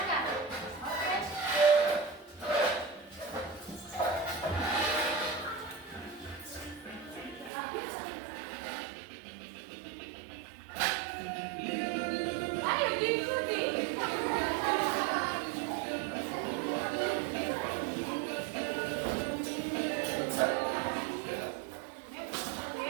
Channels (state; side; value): drops out; left; at 7.5 s